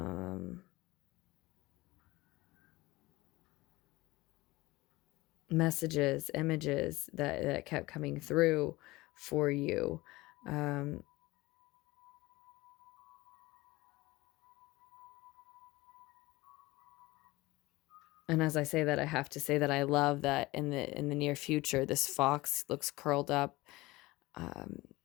messages, images that kept coming through for you. And as I say that, I have to say that I love that in the near future, this fox looks curled up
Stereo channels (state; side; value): quieter; right; 20.5 dB